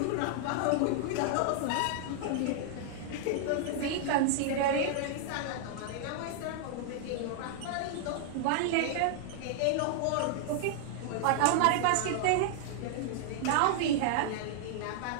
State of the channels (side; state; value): both; different; correlation -0.01